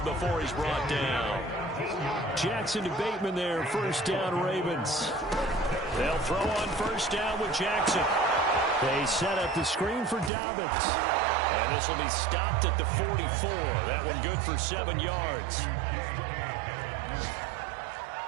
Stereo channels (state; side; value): drops out; left; at 10.3 s